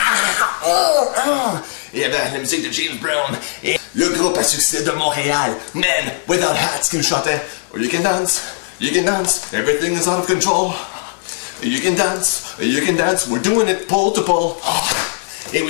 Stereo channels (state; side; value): silent; right; digital silence